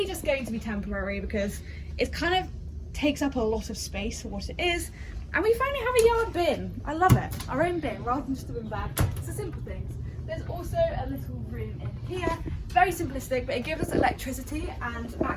just going to be temporary because it kind of takes up a lot of space for what it is. And we finally have a yard bin. I love it. Our own bin rather than just a bin bag. It's the simple things. There's also a little room in here. Very simplistic, but it gives us electricity and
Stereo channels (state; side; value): identical; both; correlation 1.00